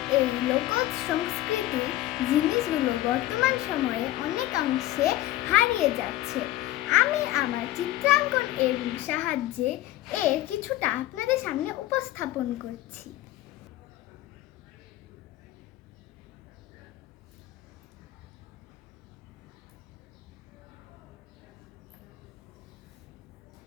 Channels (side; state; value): right; quieter; 15.7 dB